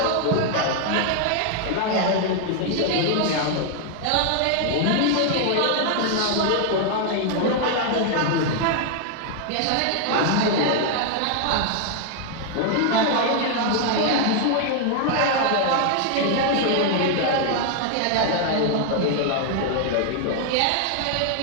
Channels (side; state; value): both; different; correlation 0.00